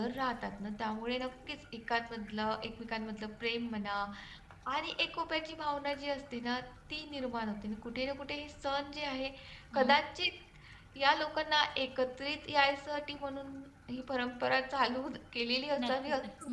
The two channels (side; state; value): both; identical; correlation 1.00